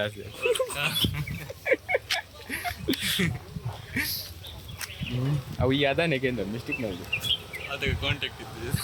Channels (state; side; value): identical; both; correlation 1.00